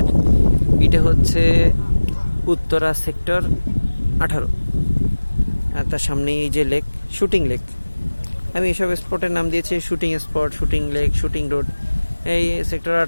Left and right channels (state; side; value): inverted; both; correlation -1.00